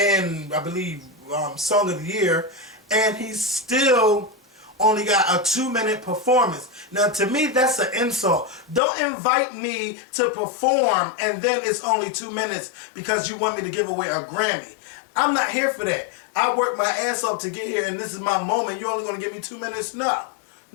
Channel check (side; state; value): right; drops out; at 8.8 s